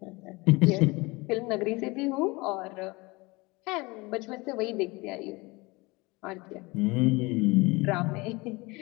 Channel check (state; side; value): quieter; right; 24.3 dB